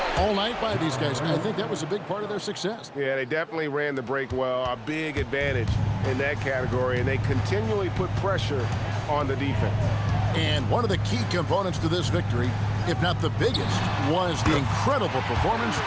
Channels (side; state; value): both; identical; correlation 1.00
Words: all night by these guys. I think that was a big part of their success. Yeah, they definitely ran the break well. A big advantage in that category, and they continually put pressure on the defense. And one of the key components to this victory, if not the biggest, was the incredible performance